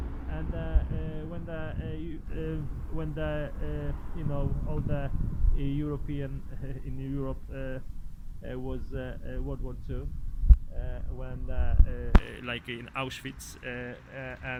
And when the you know, all the European in Europe was World War II, when like in Auschwitz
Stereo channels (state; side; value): identical; both; correlation 1.00